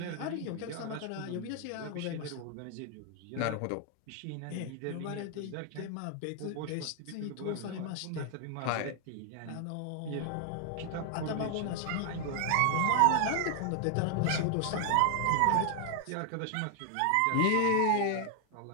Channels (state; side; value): different; both; correlation 0.00